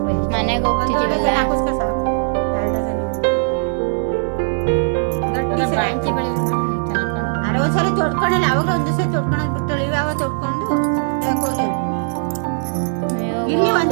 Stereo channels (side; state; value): left; silent; digital silence